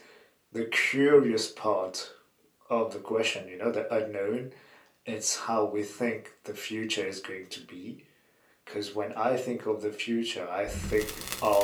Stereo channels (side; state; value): both; identical; correlation 1.00